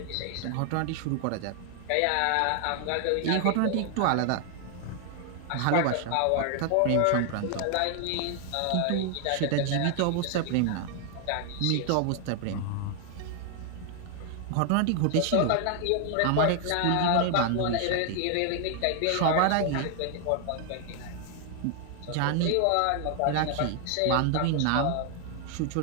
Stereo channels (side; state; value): both; different; correlation 0.00